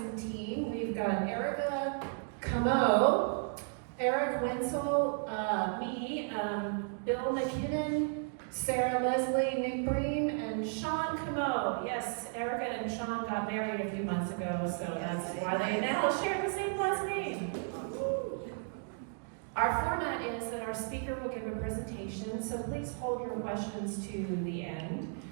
team. We've got Erica Camo, Eric Wenzel, me, Bill McKinnon, Sarah Leslie, Nick Breen, and Sean Camo. Yes, Erica and Sean got married a few months ago, so that's why they now share the same last name. Our format is that our speaker will give a presentation, so please hold your questions to the end.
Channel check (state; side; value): silent; left; 55 dB below the other